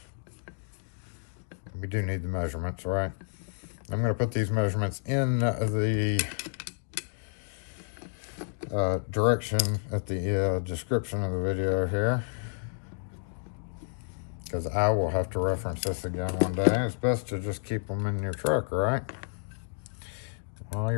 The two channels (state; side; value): silent; right; digital silence